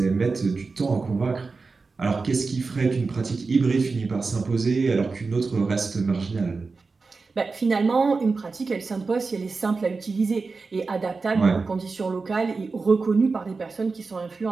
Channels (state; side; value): quieter; left; 4.2 dB